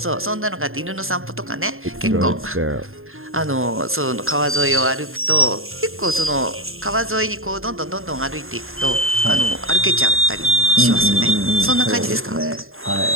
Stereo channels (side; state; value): left; late; 0.61 ms